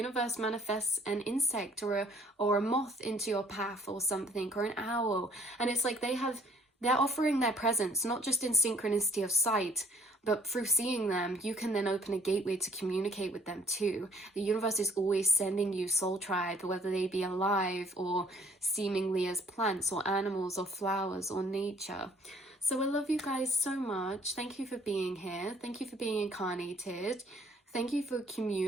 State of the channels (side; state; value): both; normal; correlation 0.61